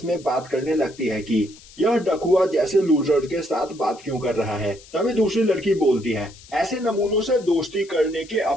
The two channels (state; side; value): noise; left; hiss, 22 dB below the sound